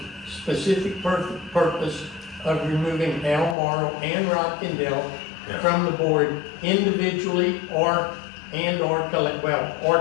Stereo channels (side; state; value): right; drops out; at 3.6 s